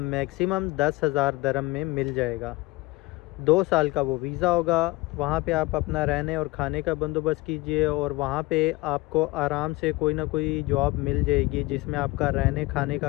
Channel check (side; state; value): right; quieter; 21.4 dB